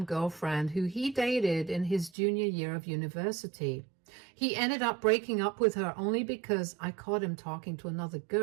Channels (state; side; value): drops out; left; at 2.1 s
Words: girlfriend who he dated in his junior year of university. He ended up breaking up with her only because I caught him talking to another